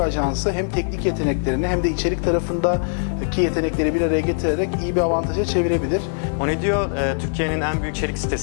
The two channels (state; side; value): silent; right; digital silence